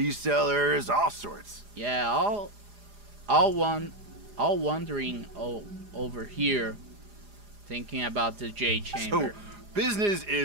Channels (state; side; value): late; left; 4.9 ms